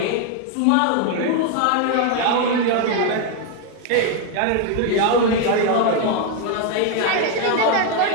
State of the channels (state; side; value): different; both; correlation 0.01